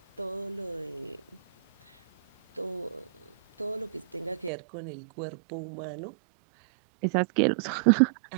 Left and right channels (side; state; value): left; drops out; at 4.5 s